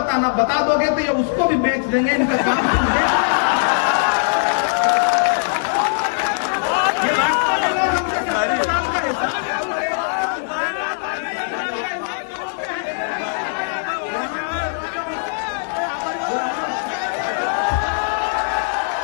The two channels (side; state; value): right; silent; digital silence